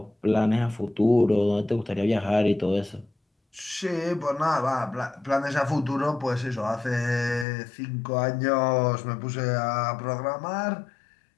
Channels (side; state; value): right; drops out; at 7.5 s